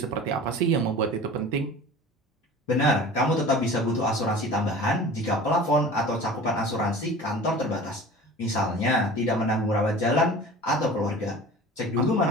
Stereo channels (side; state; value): both; normal; correlation 0.40